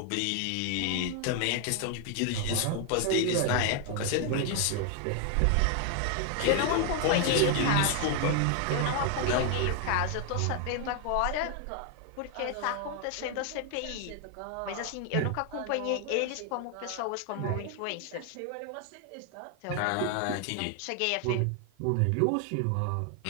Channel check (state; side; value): different; both; correlation 0.00